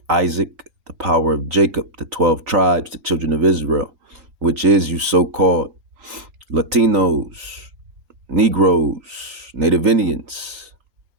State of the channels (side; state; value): left; late; 3.8 ms